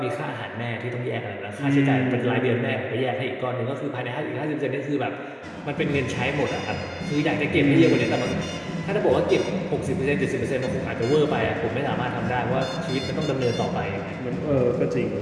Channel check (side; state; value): both; identical; correlation 1.00